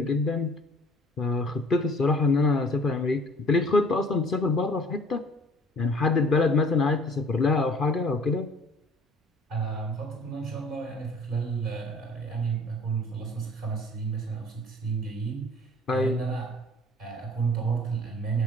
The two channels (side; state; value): both; normal; correlation 0.52